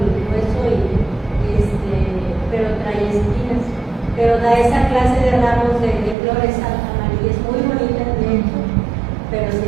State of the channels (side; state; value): left; drops out; at 6.2 s